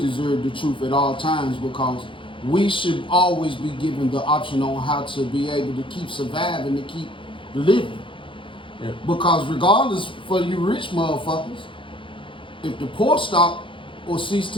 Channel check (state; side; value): late; right; 0.25 ms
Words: the truth at all times, because we should always be given the option on how to be able to keep surviving, to keep living. Yeah. Because regardless, for you rich motherfuckers, if the poor stop or cease